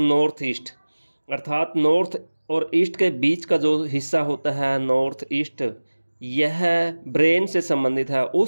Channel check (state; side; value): inverted; both; correlation -1.00